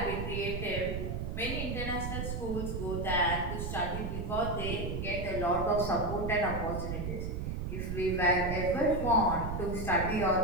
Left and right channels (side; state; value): right; noise; rumble, 3 dB below the sound